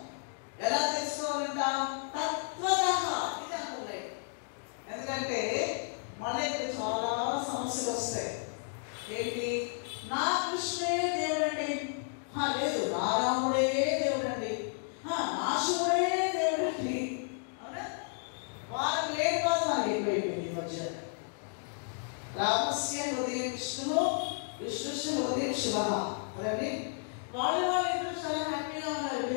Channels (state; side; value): silent; right; 56 dB below the other